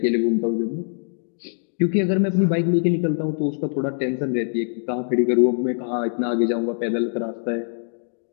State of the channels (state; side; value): silent; right; digital silence